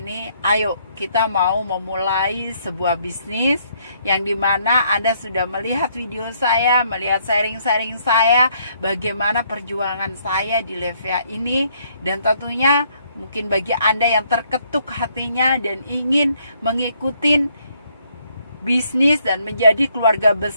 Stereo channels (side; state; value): both; inverted; correlation -0.69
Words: ayo kita mau memulai sebuah bisnis yang dimana Anda sudah melihat video saya, melihat sharing-sharing saya, bagaimana perjuangan saya di Levia ini. Dan tentunya mungkin bagi Anda yang terketuk hatinya dan ingin mengikuti bisnis dan menjadi keluarga